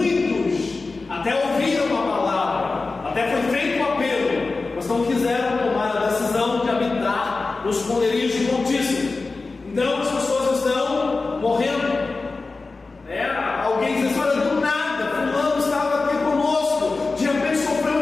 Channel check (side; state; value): right; quieter; 3.8 dB